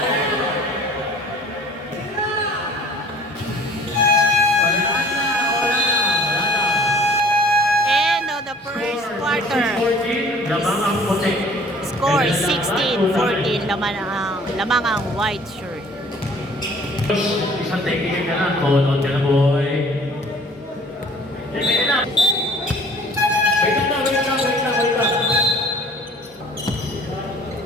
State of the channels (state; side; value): normal; both; correlation 0.51